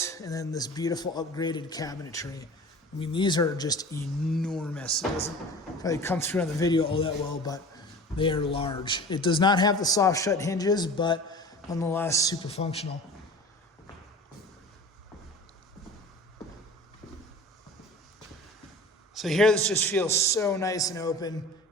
and then this beautiful upgraded cabinetry. I mean, these are just enormous. It doesn't probably come through on the video all that well, but they are large. It does not have the soft shut hinges, but nonetheless super functional. So here this just feels so nice and open,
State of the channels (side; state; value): both; normal; correlation 0.40